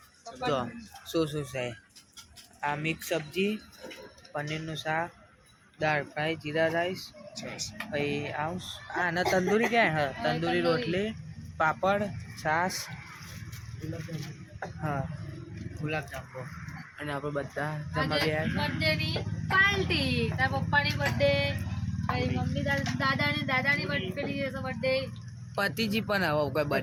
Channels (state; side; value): identical; both; correlation 1.00